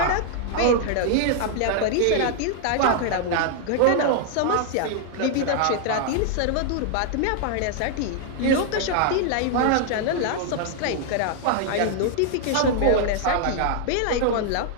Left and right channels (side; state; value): both; different; correlation 0.00